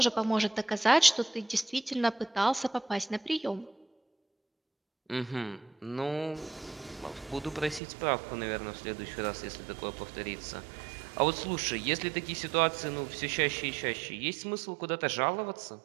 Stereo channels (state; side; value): drops out; left; at 7.8 s